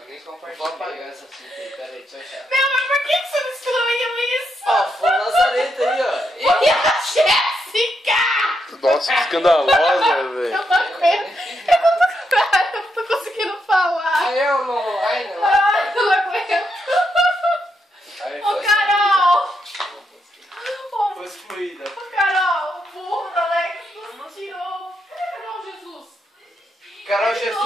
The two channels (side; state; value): both; normal; correlation 0.81